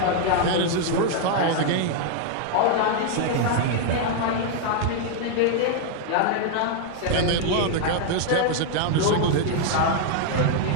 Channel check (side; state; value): both; different; correlation 0.00